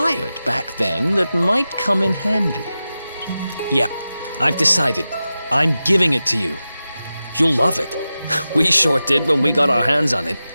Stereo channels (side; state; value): both; inverted; correlation -0.93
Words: back then that might come in handy. Yeah, I've decided. I'm giving it to you. You'll love it. We sure did when we got our hands on it.